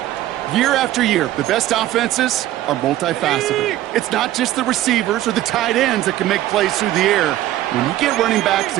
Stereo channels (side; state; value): left; quieter; 14.4 dB